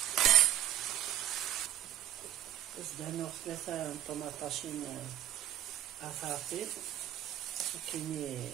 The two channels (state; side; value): quieter; left; 11.6 dB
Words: زدانو ثلاثة طماطاشين أفاطي كيني